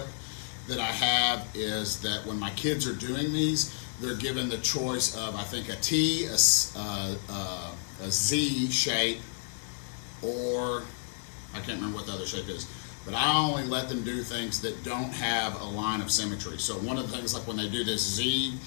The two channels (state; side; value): silent; right; digital silence